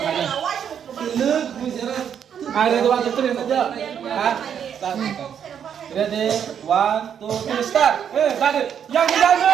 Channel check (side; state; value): left; quieter; 8.4 dB